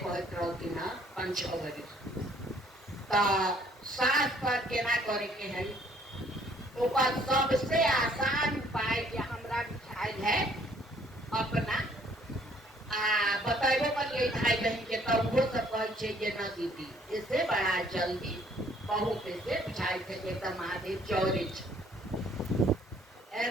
रहथिन 5-6 बजे तो सास पर केना करे के है ओकर सबसे आसान उपाय जे हमरा बुझाइल है अपना बताइबो करिए भाई बहन के तो वो सब कहे छे जे न दीदी इससे बड़ा जल्दी बहुत से बुझाई थे जे त महादेव चौरे छे।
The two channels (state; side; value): normal; both; correlation 0.62